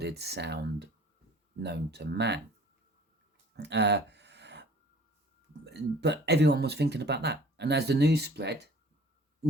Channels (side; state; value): both; normal; correlation 0.50